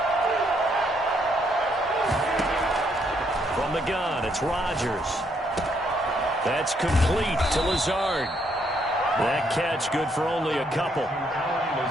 From the gun, it's Rodgers. That's complete to Lazard. That catch good for only a couple.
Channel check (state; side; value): normal; both; correlation 0.73